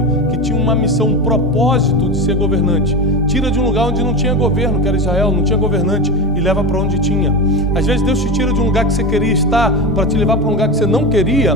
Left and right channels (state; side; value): normal; both; correlation 0.21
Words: que tinha uma missão, um propósito de ser governante. Tira de um lugar onde não tinha governo, que era Israel, não tinha governante, e leva para onde tinha. Às vezes Deus te tira de um lugar que você queria estar para te levar para um lugar que você não queria,